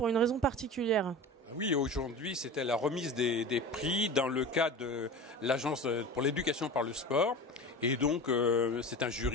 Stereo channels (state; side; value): normal; both; correlation 0.32